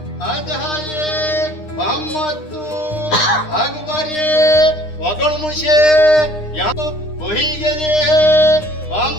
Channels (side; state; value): right; late; 9.8 ms